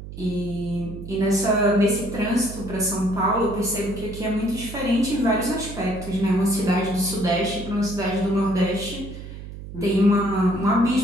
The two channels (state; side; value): noise; right; hum, 12 dB below the sound